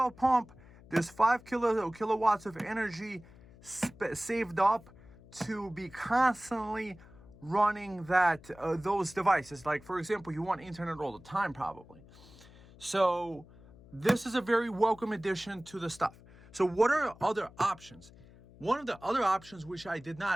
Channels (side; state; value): left; noise; hum, 22 dB below the sound